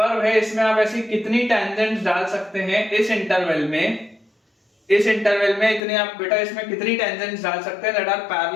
है इसमें आप ऐसी कितनी टैंजेंट्स डाल सकते हैं इस इंटरवल में, इस इंटरवल में इतनी आप बेटा इसमें कितनी टैंजेंट्स डाल सकते हैं that are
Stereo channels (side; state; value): right; drops out; at 5.8 s